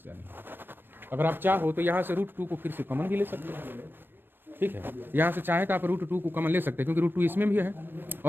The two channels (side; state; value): left; late; 0.096 ms